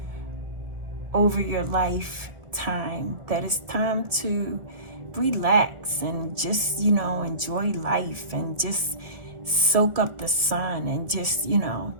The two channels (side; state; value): left; late; 1.8 ms